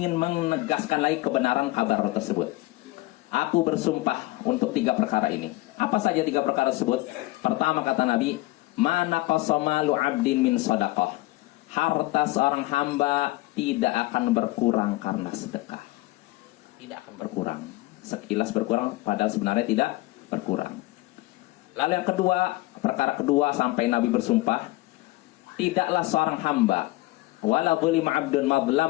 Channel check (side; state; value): right; quieter; 20.0 dB